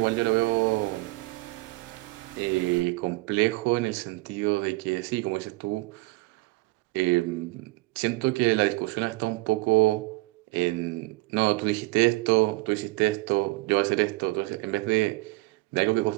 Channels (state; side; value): quieter; left; 22.3 dB